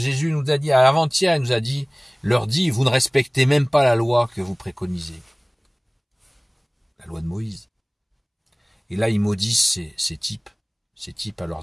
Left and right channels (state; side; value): identical; both; correlation 1.00